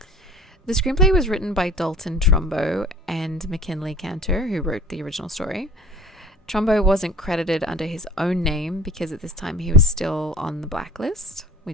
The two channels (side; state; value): both; normal; correlation 0.44